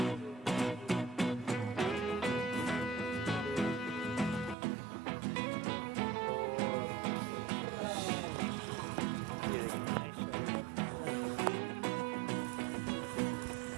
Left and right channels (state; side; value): drops out; left; at 4.5 s